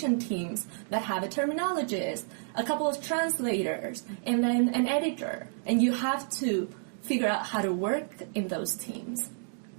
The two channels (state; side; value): silent; left; digital silence